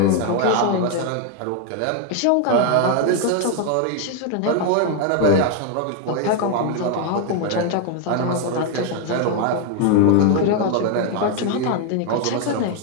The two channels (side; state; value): both; different; correlation 0.00